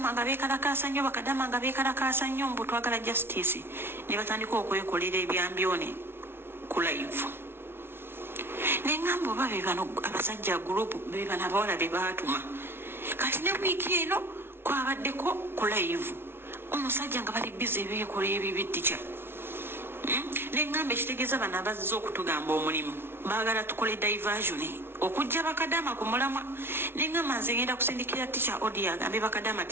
nga beekalakaasa nnyo mbu twagala justice ne batandika okwekolera ebyambyone ku live neŋŋamba oba be bano abasajja gurupu be bano abawala be baatuma kati ne wiiki eno kwabaddeko ku live omusajja nga bali bize beekola ebibittica neŋŋamba ekitegeeza bano abazze okutugamba omulimu baagala tukole diversion okujja bakadama ku mulamwa neŋŋamba nze ngenda kusindikira tica odi agambe bakadama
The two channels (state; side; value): late; left; 0.11 ms